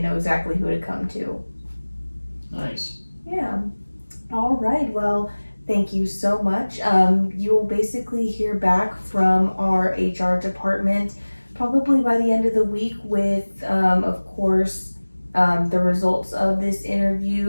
know exactly who to come to. Nice. Yeah. All right, well, thank you so much. You will basically hear back from our HR department probably by the end of the week with, of course, the results of this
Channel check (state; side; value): inverted; both; correlation -1.00